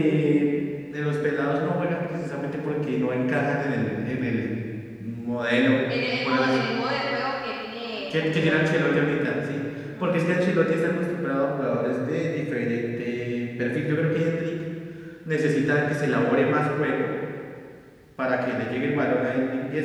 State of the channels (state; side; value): identical; both; correlation 1.00